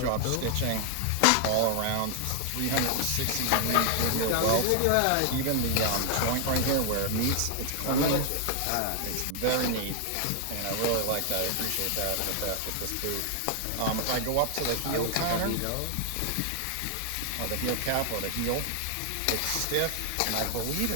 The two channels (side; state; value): both; different; correlation 0.00